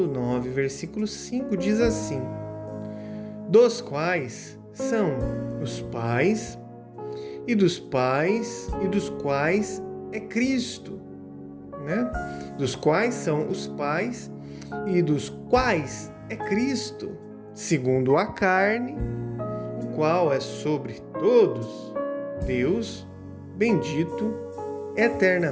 9, versículo 5, diz assim: dos quais são os pais, e dos pais, e dos quais é Cristo, né? Dos quais são os pais, e dos quais é Cristo, segundo a carne, o qual é sobre todos, Deus, bendito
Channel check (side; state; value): both; identical; correlation 1.00